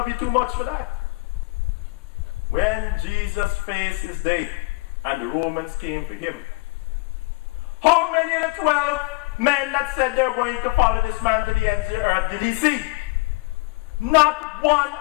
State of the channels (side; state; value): right; quieter; 25.8 dB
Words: you too much for that. When Jesus faced his day and the Romans came for him, how many of the 12 men that said they're going to follow this man to the ends of the earth did he see? Not one